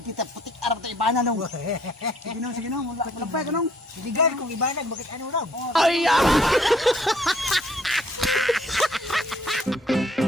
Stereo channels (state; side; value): normal; both; correlation 0.62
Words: kita, putik arap tayo ibana nung. Sige nung, malapay ka nung. Sidigan kong ibanag, bakit ano lang?